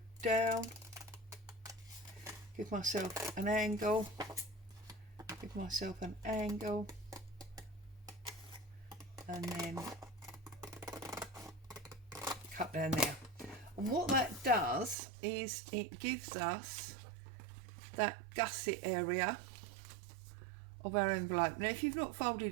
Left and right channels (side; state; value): left; drops out; at 15.0 s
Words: down, give myself an angle, give myself an angle, and then cut down there. And what that does is it gives us that gusset area of our envelope. Now if you've not